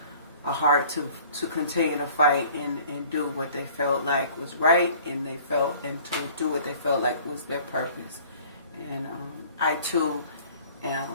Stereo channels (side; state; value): both; inverted; correlation -0.51